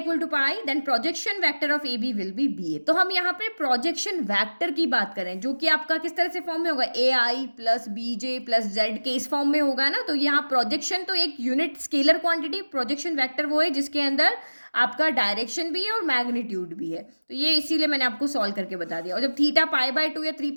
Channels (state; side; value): inverted; both; correlation -1.00